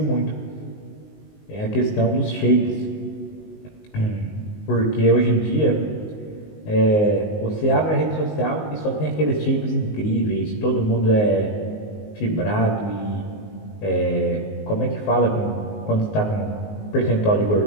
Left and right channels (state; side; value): late; right; 19 ms